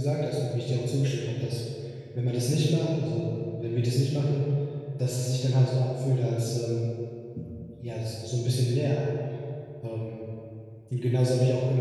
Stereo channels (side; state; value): both; identical; correlation 1.00